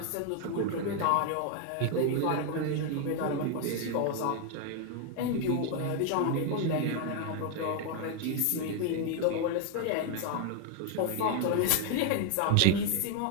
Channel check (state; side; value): different; both; correlation 0.00